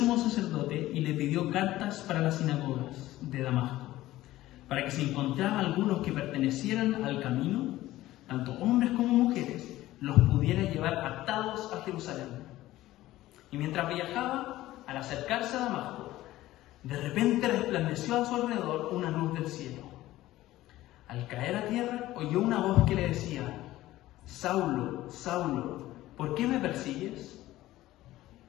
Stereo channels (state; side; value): quieter; right; 15.9 dB